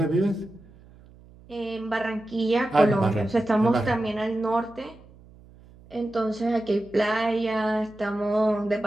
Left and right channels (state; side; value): noise; right; hum, 24 dB below the sound